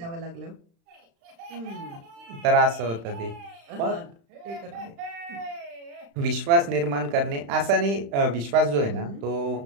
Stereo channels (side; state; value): left; late; 35 ms